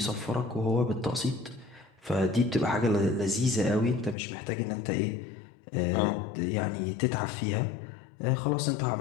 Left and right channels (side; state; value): right; drops out; at 4.2 s